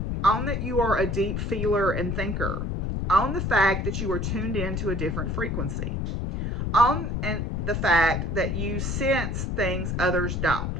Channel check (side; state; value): left; noise; rumble, 1 dB below the sound